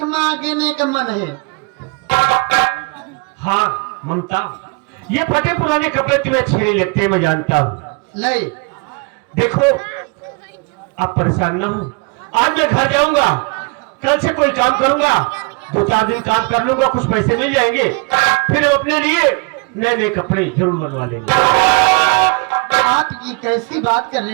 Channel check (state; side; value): quieter; left; 31.0 dB